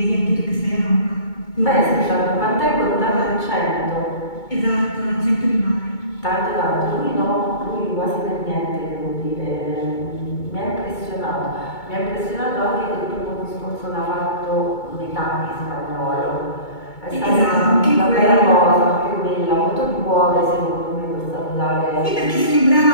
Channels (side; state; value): right; late; 2.2 ms